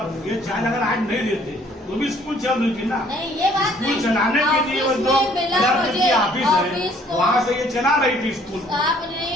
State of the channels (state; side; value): normal; both; correlation 0.60